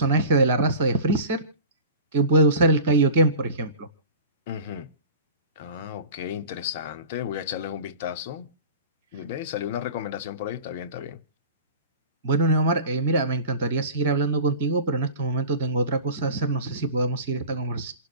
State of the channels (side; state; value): both; inverted; correlation -0.37